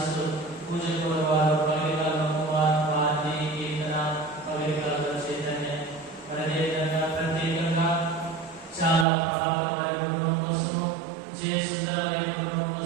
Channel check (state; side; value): drops out; left; at 9.1 s